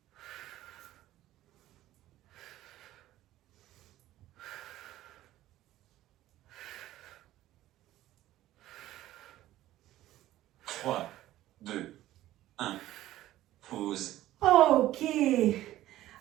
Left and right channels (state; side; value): quieter; left; 14.7 dB